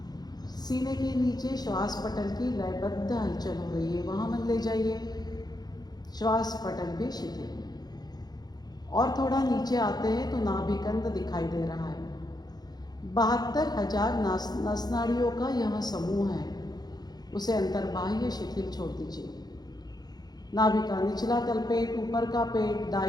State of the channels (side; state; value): right; late; 0.19 ms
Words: सीने के नीचे श्वास पटल की लयबद्ध हलचल हो रही है, वहाँ मन ले जाइए। श्वास पटल भी शिथिल। और थोड़ा नीचे आते हैं तो नाभिकंद दिखाई दे रहा है। 72,000 नसनाड़ियों का यह समूह है, उसे अंतर्बाह्य शिथिल छोड़ दीजिए। नाभि का निचला तलपेट, ऊपर का पेट,